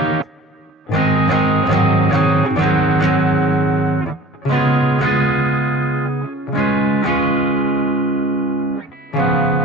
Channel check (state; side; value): normal; both; correlation 0.46